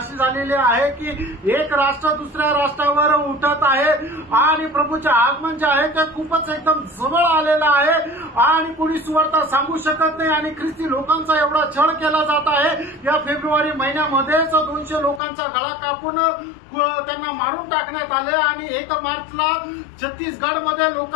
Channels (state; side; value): drops out; right; at 15.2 s